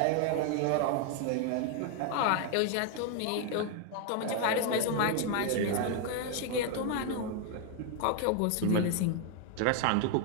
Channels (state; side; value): different; both; correlation 0.01